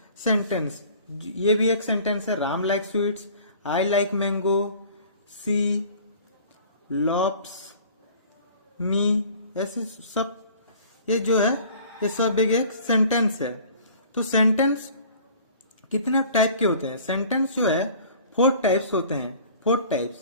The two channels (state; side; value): inverted; both; correlation -0.49